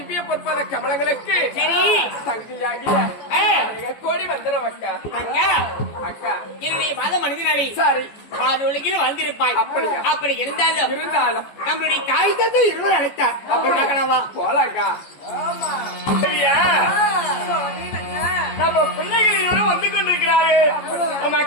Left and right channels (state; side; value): late; right; 14 ms